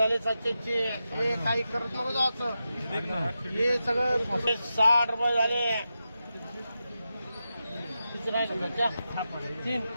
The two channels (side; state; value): both; inverted; correlation -0.90